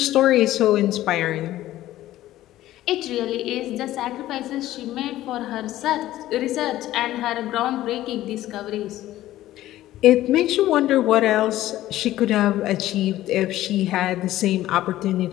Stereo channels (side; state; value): right; quieter; 14.6 dB